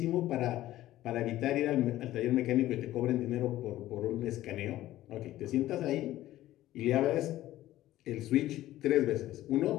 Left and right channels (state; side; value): quieter; right; 14.8 dB